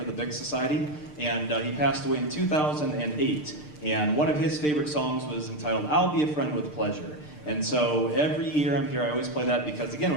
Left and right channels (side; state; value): right; late; 6.7 ms